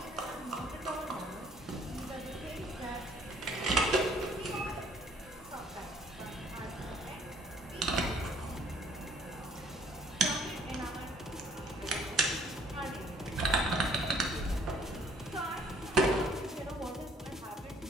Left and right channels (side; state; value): both; normal; correlation 0.60